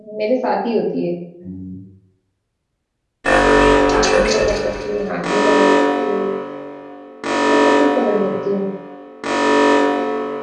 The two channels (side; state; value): both; identical; correlation 1.00